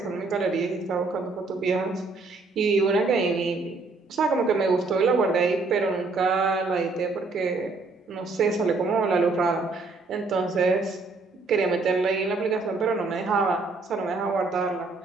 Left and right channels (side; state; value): left; quieter; 3.7 dB